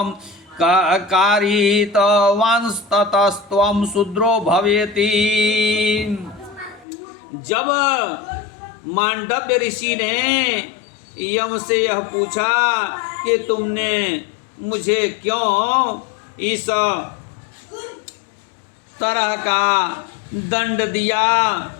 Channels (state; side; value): drops out; right; at 6.9 s